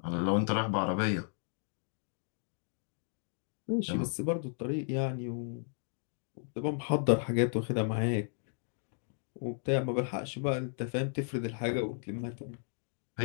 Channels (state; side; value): silent; right; 55 dB below the other